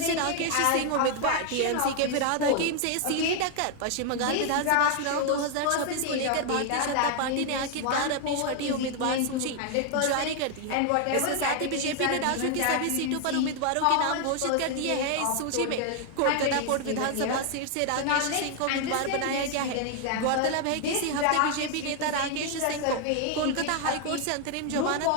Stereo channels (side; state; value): both; different; correlation 0.00